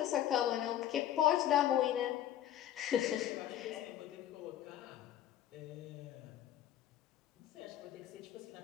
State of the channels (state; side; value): quieter; right; 11.6 dB